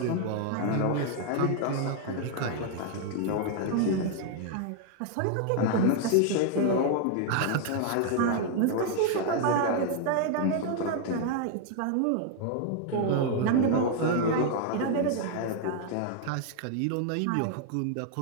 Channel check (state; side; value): different; both; correlation 0.00